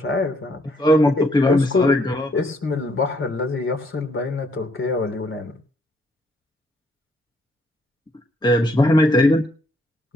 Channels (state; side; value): normal; both; correlation 0.70